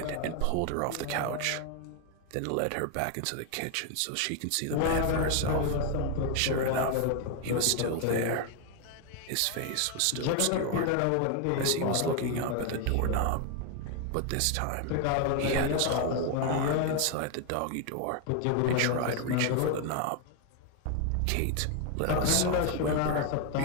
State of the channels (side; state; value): both; different; correlation 0.01